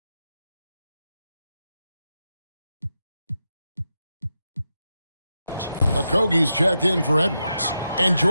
Okogie's checked in for Edwards. And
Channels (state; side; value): inverted; both; correlation -0.88